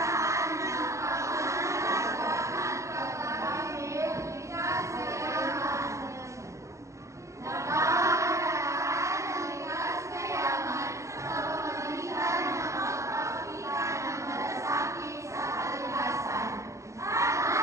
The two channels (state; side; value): late; left; 0.15 ms